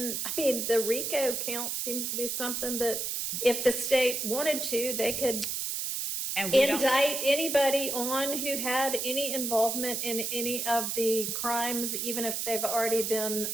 RICO count seems to be something that if the state wanted to, they could indict anybody on who had any involvement in any of the crimes, even if they've already been,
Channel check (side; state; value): right; noise; hiss, 2 dB below the sound